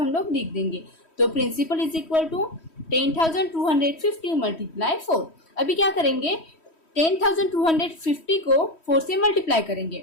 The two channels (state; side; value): late; right; 3.1 ms